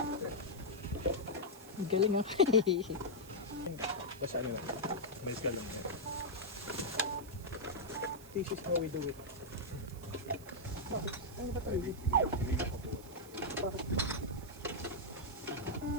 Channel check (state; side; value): noise; right; hiss, 19 dB below the sound